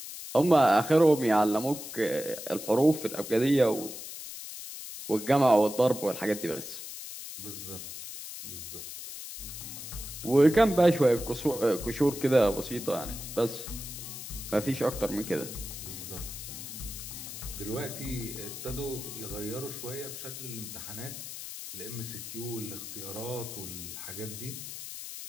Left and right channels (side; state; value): left; noise; hiss, 10 dB below the sound